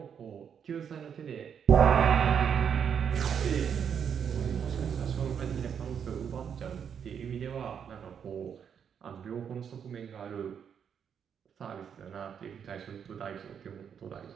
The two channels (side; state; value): left; quieter; 7.7 dB